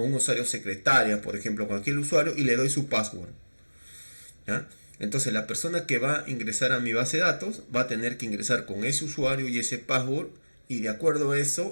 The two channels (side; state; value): both; inverted; correlation -1.00